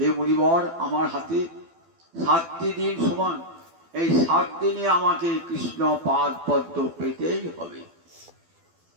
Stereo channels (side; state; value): left; late; 12 ms